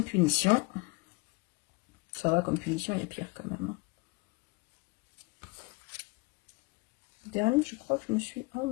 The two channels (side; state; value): right; quieter; 27.1 dB